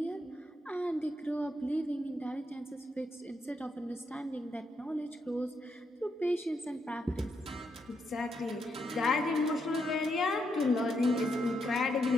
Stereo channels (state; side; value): normal; both; correlation 0.80